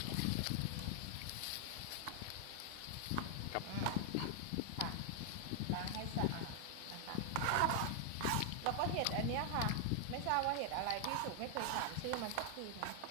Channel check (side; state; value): both; different; correlation 0.00